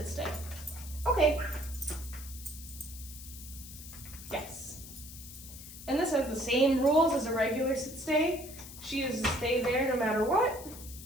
stay. Okay. Yes. And this has the same rules as a regular sit stay. She is to stay there no matter what.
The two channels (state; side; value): noise; left; hiss, 14 dB below the sound